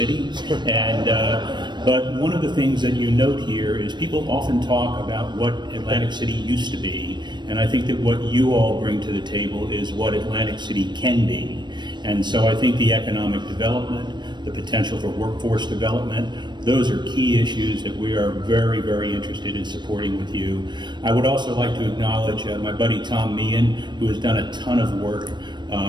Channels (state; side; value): late; left; 0.22 ms